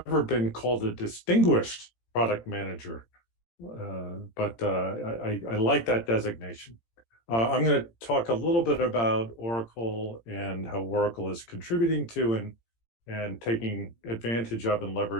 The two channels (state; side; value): late; right; 17 ms